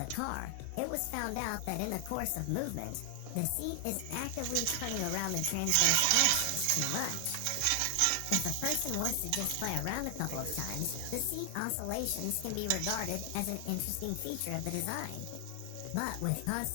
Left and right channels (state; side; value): different; both; correlation 0.00